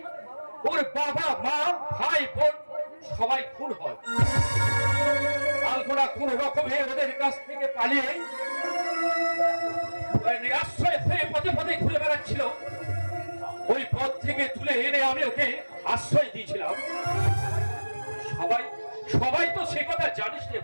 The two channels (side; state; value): both; inverted; correlation -1.00